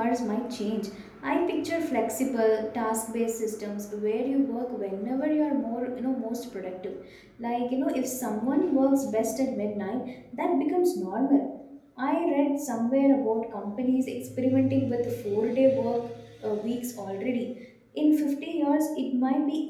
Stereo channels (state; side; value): identical; both; correlation 1.00